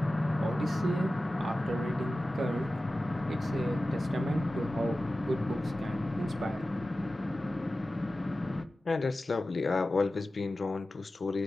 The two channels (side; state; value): both; normal; correlation 0.95